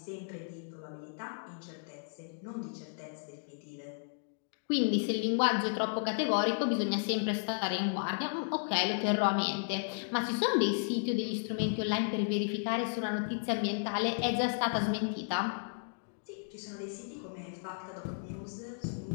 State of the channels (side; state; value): right; silent; digital silence